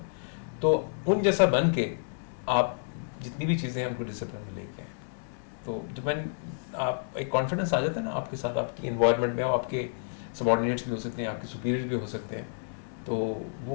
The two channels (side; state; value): right; silent; digital silence